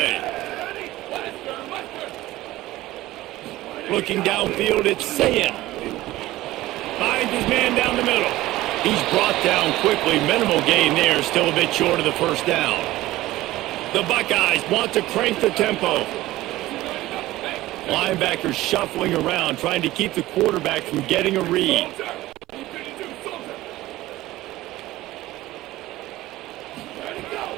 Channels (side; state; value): left; quieter; 16.8 dB